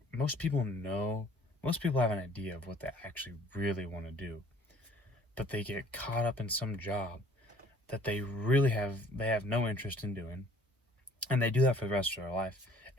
most people have an idea of what they actually really want to do, but they get caught up in some job that they have no interest in doing, and they do that for the rest of their life,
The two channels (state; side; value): normal; both; correlation 0.55